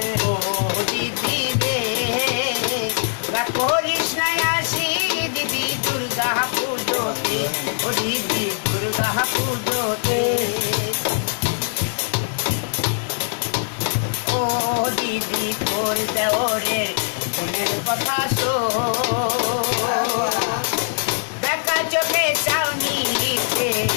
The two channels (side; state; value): right; silent; digital silence